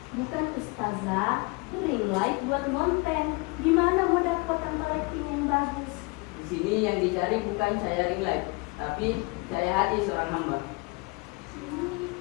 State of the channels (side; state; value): right; quieter; 27.2 dB